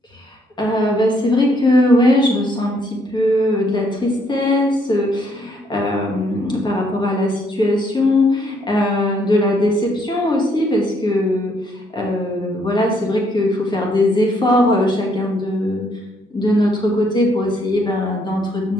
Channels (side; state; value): both; normal; correlation 0.70